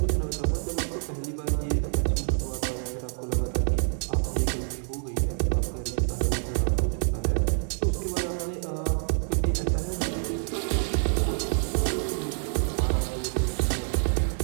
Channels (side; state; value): left; silent; digital silence